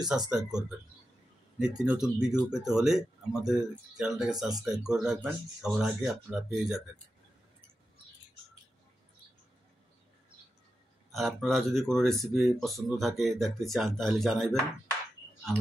সাবস্ক্রাইব করবেন। নিত্য নতুন ভিডিও পেতে হলে আমাদের চ্যানেলটাকে সাবস্ক্রাইব করে রাখবেন, সবার আগে আপনারা পেয়ে যাবেন। আর আপনারা যদি কোনো রেসিপি পছন্দ থাকে, দেখতে চান, তাহলে জানাইবেন,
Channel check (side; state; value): both; normal; correlation 0.90